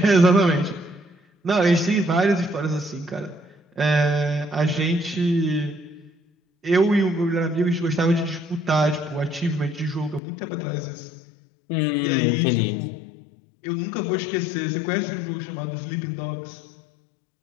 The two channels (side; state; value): right; drops out; at 10.2 s